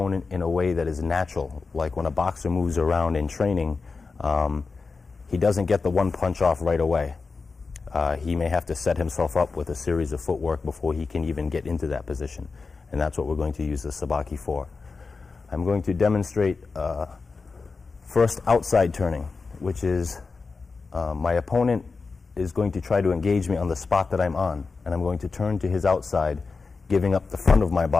in a way that is natural. Like when a boxer moves around in training, he doesn't get the one punch off right away. He may have to set himself up with a series of footwork before he can even get into that position. And that's what we're going to use the sabaki for. I'm going to demonstrate first outside turning, which is my opponent is going to try to engage me on the spot that I'm on, and I'm going to turn to his outside, giving up the front of my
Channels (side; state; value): right; quieter; 4.4 dB